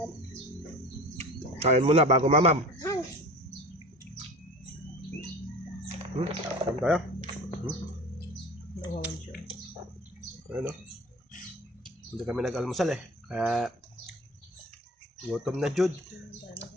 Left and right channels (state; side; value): normal; both; correlation 0.37